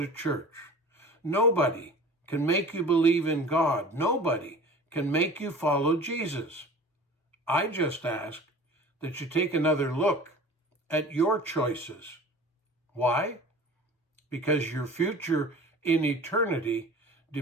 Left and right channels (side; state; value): both; normal; correlation 0.40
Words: church. Nobody can make you believe in God. Nobody can make you follow Jesus. I just ask that you take another look at your choices. Why? Because your future in eternity